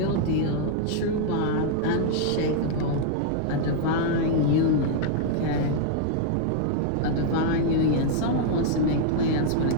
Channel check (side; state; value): both; different; correlation -0.01